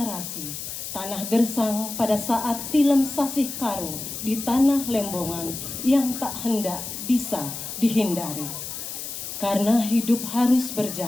tanah gersang pada saat tilem sasih karo di tanah Lembongan yang tak hendak bisa dihindari. Karena hidup harus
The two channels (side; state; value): left; noise; hiss, 7 dB below the sound